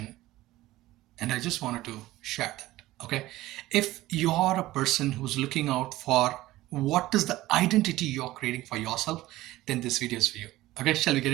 and I just wanted to share that. Okay, if you're a person who's looking out for what is the identity you're creating for yourself, then this video is for you. Okay, shall we get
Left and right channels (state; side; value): quieter; left; 16.8 dB